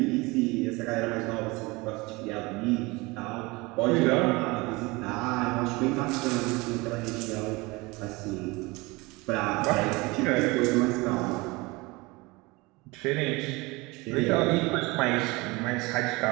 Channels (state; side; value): quieter; left; 24.0 dB